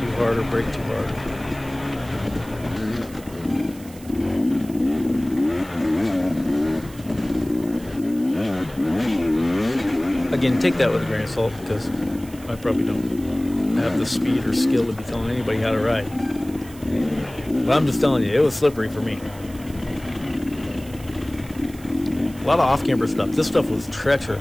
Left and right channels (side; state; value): right; noise; hiss, 20 dB below the sound